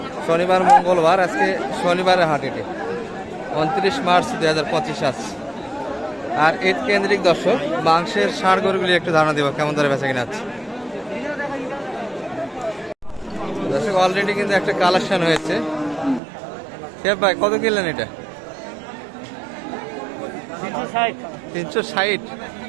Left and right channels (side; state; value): left; drops out; at 16.2 s